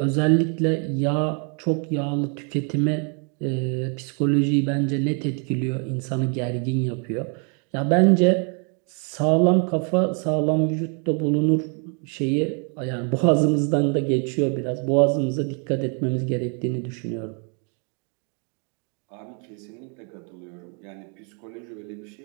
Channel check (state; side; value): quieter; left; 39.1 dB